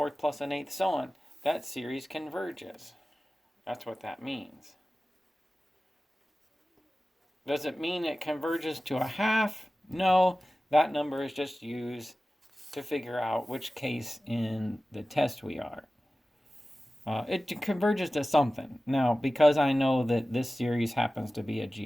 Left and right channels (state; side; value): normal; both; correlation 0.96